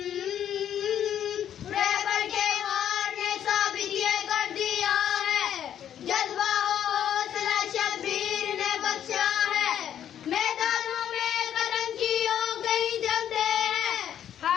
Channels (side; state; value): right; quieter; 10.0 dB